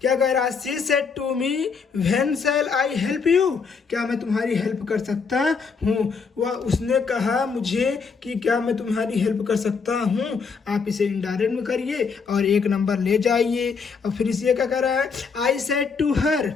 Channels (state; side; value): quieter; right; 5.4 dB